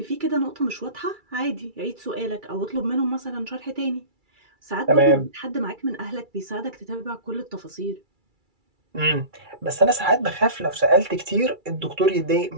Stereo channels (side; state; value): left; late; 2.3 ms